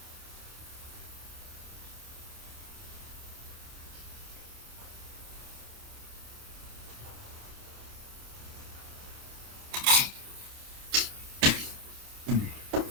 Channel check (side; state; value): left; late; 28 ms